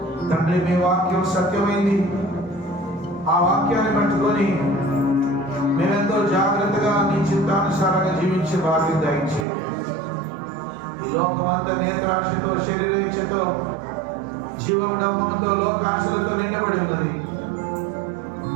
తండ్రి. మీ వాక్యం సత్యమైంది. ఆ వాక్యాన్ని పట్టుకొని మేమెంతో జాగ్రత్తగా నీ చిత్తానుసారంగా జీవించే భాగ్యం దయచేయండి. ఈ లోకమంతా నేత్రాశతో, శరీరేచ్ఛతో, జీవముడంబంతో, లోకాశలతో నిండబడి ఉన్నది.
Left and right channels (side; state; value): left; drops out; at 9.5 s